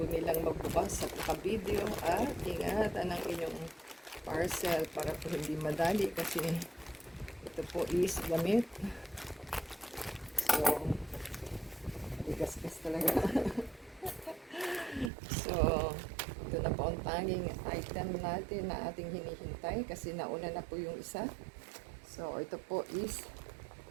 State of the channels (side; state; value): left; drops out; at 15.1 s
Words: nilang magbukas at naka-video at ingatan ang inyong parcel para po hindi madali kasi ito po is gamit. So, ligas-gas talaga. So, ito na po ang tanging item natin na ating hinihintay kasi nauna na po yung isa. So, ito po is